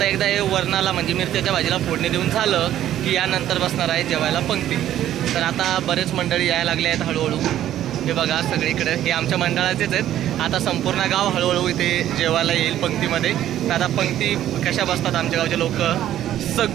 एकदा हे वरणाला म्हणजे मिरच्याच्या भाजीला फोडणी देऊन झालं की यानंतर बसणार आहे जेवायला पंक्ती. तर आता बरेच मंडळी यायला लागले आहेत हळूहळू. हे बघा सगळीकडे हे आमच्या मंडळाचेच आहेत. आता संपूर्ण गाव हळूहळू इथे जेवायला येईल पंक्तीमध्ये. तर आता पंक्ती कशा बसतात आमच्या गावचे लोक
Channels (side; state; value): left; quieter; 12.1 dB